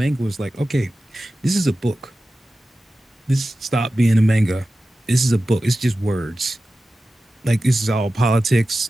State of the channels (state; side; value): normal; both; correlation 0.94